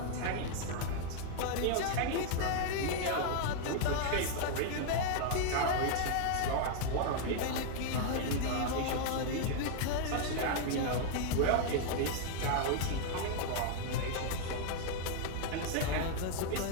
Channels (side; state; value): both; different; correlation 0.00